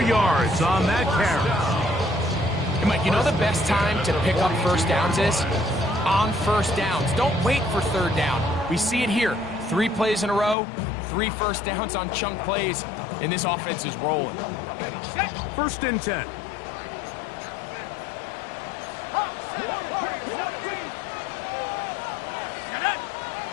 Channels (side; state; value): right; drops out; at 10.6 s